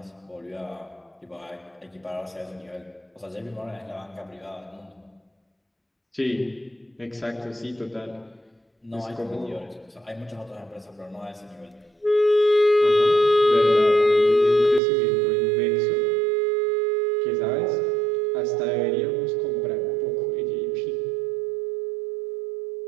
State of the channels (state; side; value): drops out; left; at 14.8 s